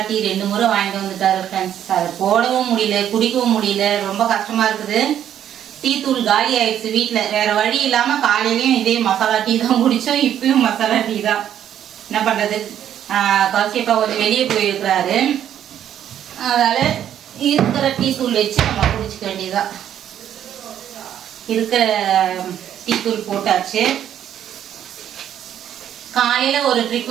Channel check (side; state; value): left; quieter; 10.3 dB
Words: டீ 2 முறை வாங்கிட்டு வந்துட்டாரு ஃப்ரெண்ட்ஸ். அதை போடவும் முடியல, குடிக்கவும் முடியல, ரொம்ப கஷ்டமா இருக்குது. டீ தூள் காலி ஆயிடுச்சு வீட்டில். வேற வழி இல்லாம காலையிலயும் இதே மசாலா டீ தான் குடிச்சோம், இப்பயும் மசாலா டீ தான். என்ன பண்றது, கௌசிப்பா கொஞ்சம் வெளியே போயிருக்கிறாரு. அதனால இருக்கிற டீ தூள் வச்சு நம்ம குடிச்சுக்க வேண்டியதான். இருக்கிற டீ தூள் போட்டாச்சு. காலையில ஒரு